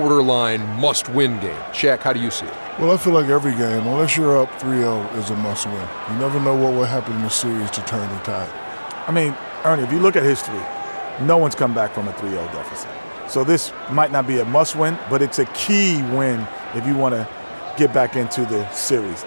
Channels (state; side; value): inverted; both; correlation -1.00